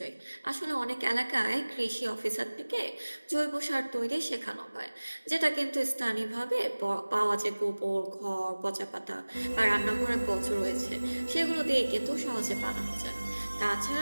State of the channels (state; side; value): inverted; both; correlation -1.00